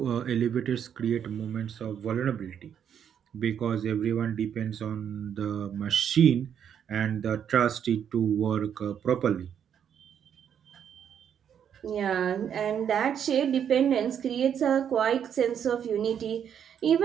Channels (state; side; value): quieter; left; 8.6 dB